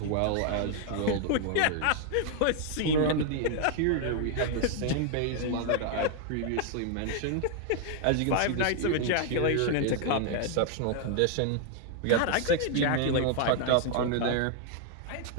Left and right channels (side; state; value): both; different; correlation 0.00